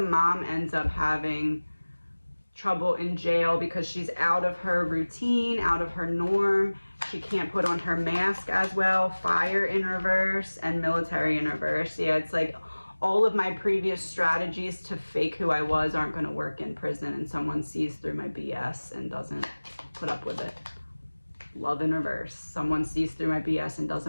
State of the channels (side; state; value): both; inverted; correlation -1.00